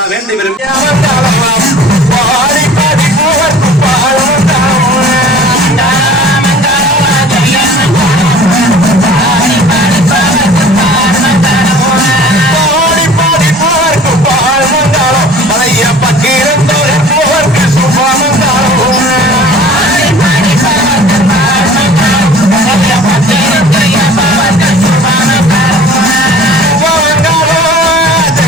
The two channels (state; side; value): normal; both; correlation 0.46